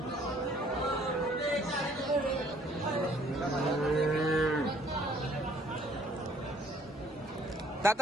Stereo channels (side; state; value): both; normal; correlation 0.60